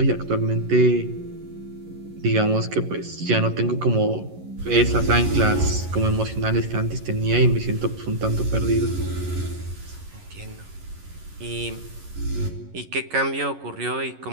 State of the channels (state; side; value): late; left; 11 ms